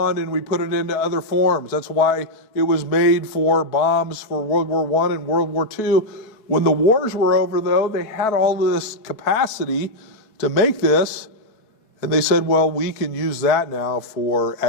and we put it into other forms. That's why it was made for bombs for World War I and World War II. When the wars were over, though, they had all of this capacity to make this, and they said, well, we can use that now for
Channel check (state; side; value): late; right; 4.6 ms